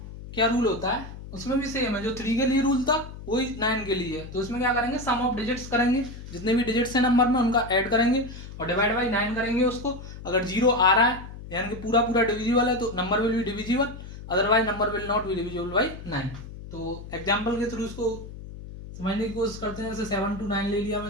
क्या रूल होता है, उसमें भी सेम है जो 3 के लिए रूल था वही 9 के लिए है। तो इसमें क्या करेंगे, सम ऑफ डिजिट्स करेंगे, जितने भी डिजिट्स हैं नंबर में उनका ऐड करेंगे और डिवाइड बाई 9 करेंगे उसको। अगर 0 आ रहा है यानी कि पूरा पूरा डिविजिबल है तो number will be divisible, otherwise number will not be divisible by 9। तो एग्जाम्पल के थ्रू इसको समझने की कोशिश करते हैं। जैसे 7 to 9 ले लिया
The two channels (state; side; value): noise; left; hum, 13 dB below the sound